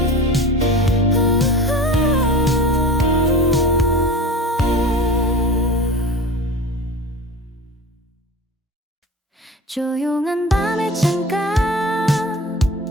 조용한 밤의 창가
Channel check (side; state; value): both; normal; correlation 0.35